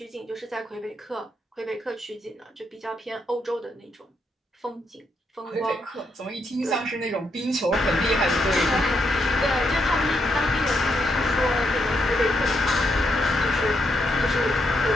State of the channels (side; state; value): both; normal; correlation 0.79